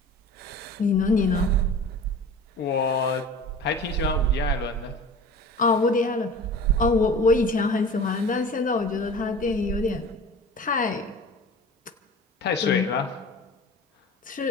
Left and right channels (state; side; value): normal; both; correlation 0.39